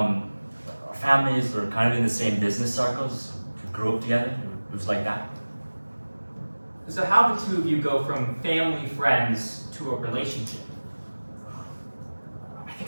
families were kind of in the same business circles. We grew up together. It was like that. So how did the two of you go from family friends to a relationship? I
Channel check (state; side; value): inverted; both; correlation -1.00